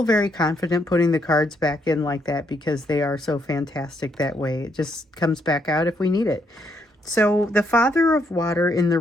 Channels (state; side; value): normal; both; correlation 0.75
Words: very confident putting the cards back in like that because they are so fantastic that way. It just comes back out if we need it. So the Father of Water in the